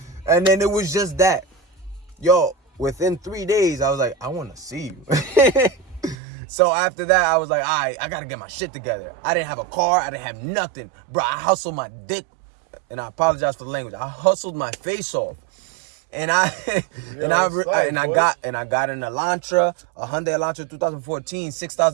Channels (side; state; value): left; drops out; at 6.2 s